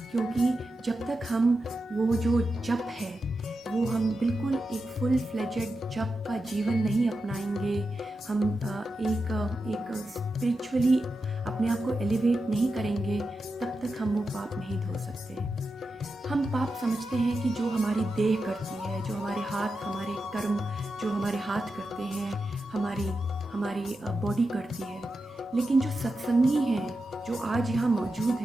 क्योंकि जब तक हम वो जो जप है, वो हम बिल्कुल एक फुल फ्लेजेड जप का जीवन नहीं अपनाएंगे, हम एक स्पिरिचुअली अपने आप को एलिवेट नहीं करेंगे, तब तक हम वो पाप नहीं धो सकते। हम पाप समझते हैं कि जो हमारी देह करती है, जो हमारे हाथ, हमारे कर्म जो हमारे हाथ करते हैं, हमारी बॉडी करती है। लेकिन जो सत्संगी हैं, जो आज यहाँ मौजूद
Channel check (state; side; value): normal; both; correlation 0.90